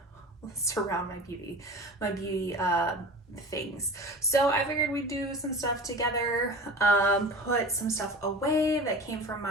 surround my beauty things. So I figured we'd do some stuff together, put some stuff away that came from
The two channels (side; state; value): both; normal; correlation 0.36